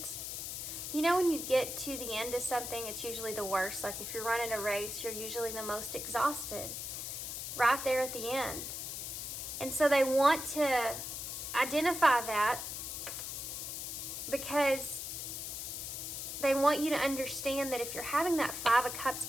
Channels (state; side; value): noise; left; hiss, 5 dB below the sound